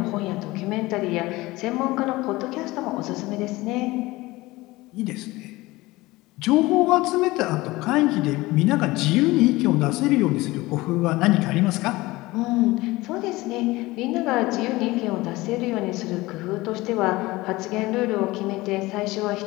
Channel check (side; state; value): right; quieter; 20.1 dB